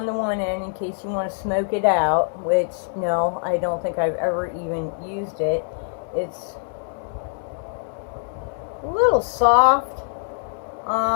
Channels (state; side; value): silent; right; digital silence